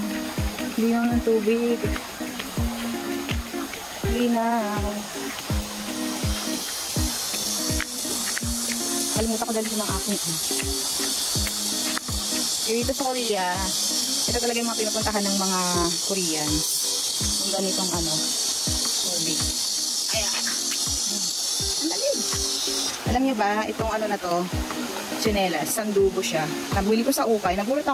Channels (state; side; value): identical; both; correlation 1.00